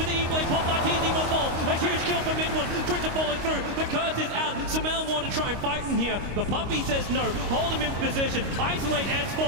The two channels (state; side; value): late; left; 25 ms